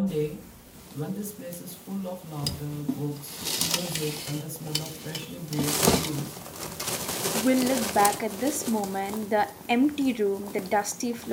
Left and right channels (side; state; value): both; identical; correlation 1.00